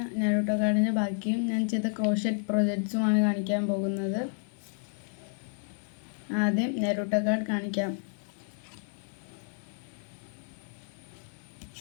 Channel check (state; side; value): silent; right; 57 dB below the other